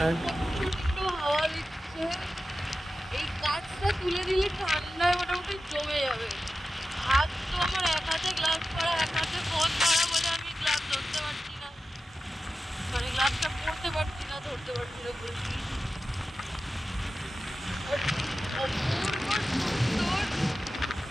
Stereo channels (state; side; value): normal; both; correlation 0.93